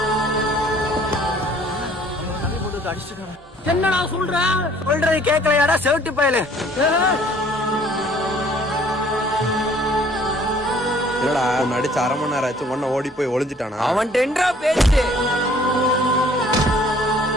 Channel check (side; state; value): both; normal; correlation 0.57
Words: என்னடா சொல்ற? சொல்றது கேட்கலையாடா செவிட்டு பயலு. என்னடா உன்னை அடிச்சு 1/2 மணி நேரம் ஆச்சு, ஒன்ன ஓடி போய் ஒளிஞ்சிட்டானா? அவன் டெண்டரா பேச்சு.